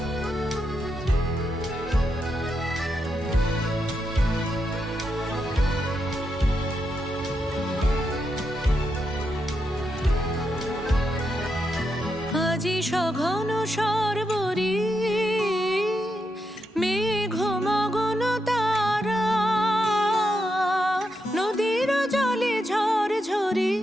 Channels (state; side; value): normal; both; correlation 0.84